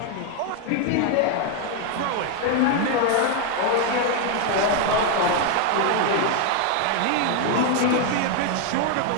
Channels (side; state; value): both; different; correlation 0.01